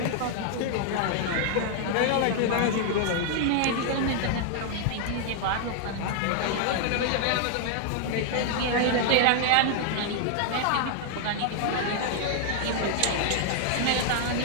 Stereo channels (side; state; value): both; different; correlation 0.00